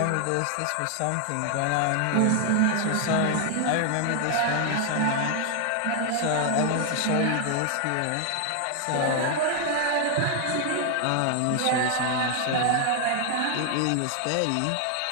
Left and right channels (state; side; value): different; both; correlation 0.00